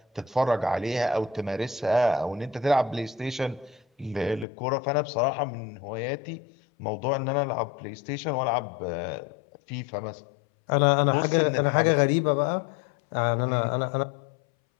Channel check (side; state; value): right; drops out; at 4.5 s